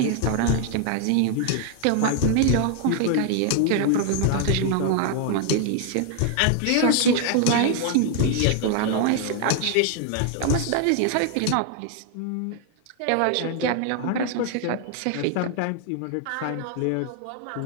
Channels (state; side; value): different; both; correlation 0.00